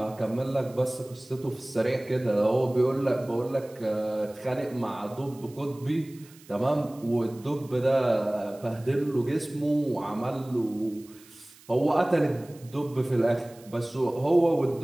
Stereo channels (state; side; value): noise; right; hiss, 24 dB below the sound